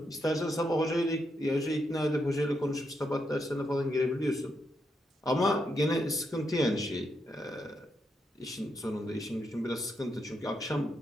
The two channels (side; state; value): both; normal; correlation 0.81